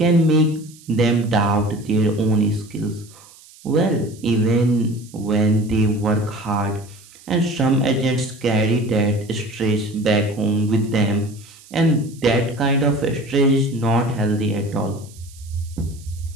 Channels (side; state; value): right; noise; hiss, 23 dB below the sound